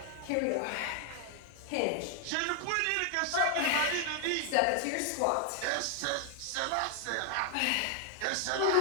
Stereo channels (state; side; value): different; both; correlation 0.00